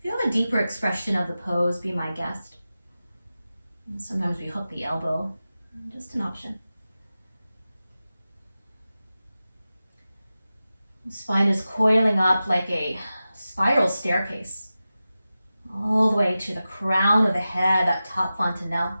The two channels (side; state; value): both; inverted; correlation -0.94